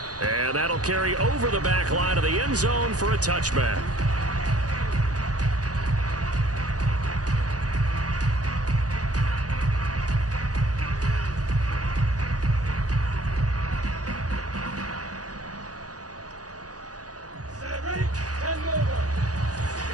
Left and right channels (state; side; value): late; left; 0.67 ms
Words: And that'll carry over the back line of the end zone for a touchback.